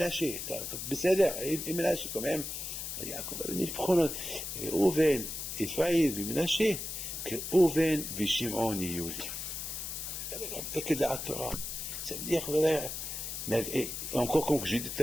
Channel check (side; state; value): left; noise; hiss, 5 dB below the sound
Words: Il Ménaché quand même. Yaakov Avinu, il prend Oven, Ephraim, Ménaché, que Oven, Vishimon, Yiyuli. Quel da'at Torah. Ça veut dire, voilà. Mais encore comme j'ai dit